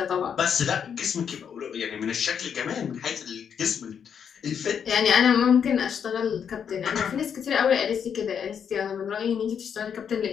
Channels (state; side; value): quieter; right; 7.6 dB